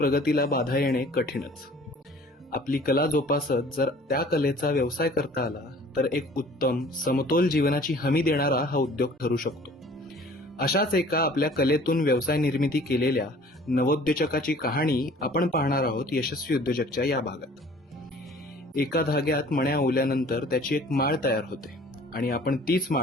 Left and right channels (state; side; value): normal; both; correlation 0.50